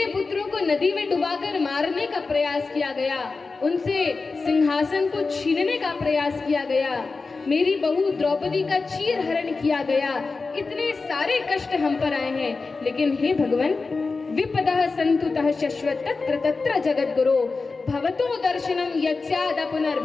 पुत्रों को नदी में डुबाकर मारने का प्रयास किया गया, उनसे सिंहासन को छीनने का प्रयास किया गया, मेरी बहू द्रौपदी का चीर हरण किया गया, इतने सारे कष्ट हम पर आए हैं। लेकिन हे भगवान, विपदः संतुतः शश्वत तत्र तत्र जगद्गुरो भवतो दर्शनम यस्याद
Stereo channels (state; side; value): quieter; right; 4.1 dB